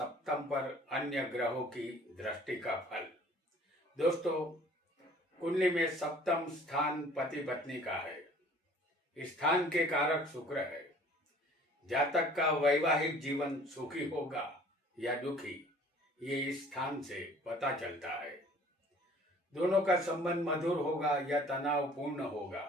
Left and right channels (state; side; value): normal; both; correlation 0.51